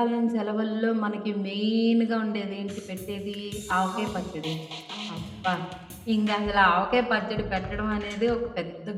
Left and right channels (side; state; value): both; identical; correlation 1.00